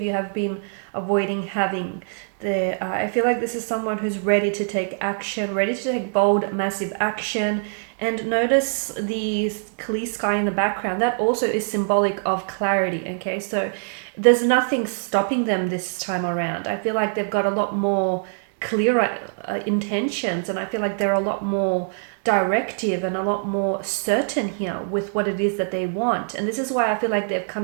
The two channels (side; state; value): left; silent; digital silence